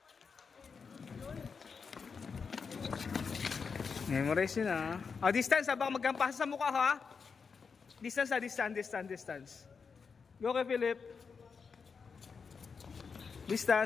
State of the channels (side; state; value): right; quieter; 5.5 dB